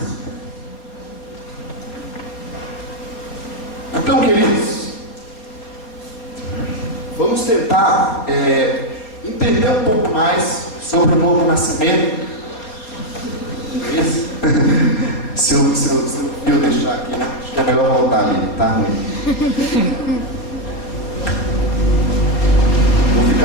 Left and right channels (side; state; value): right; late; 4.4 ms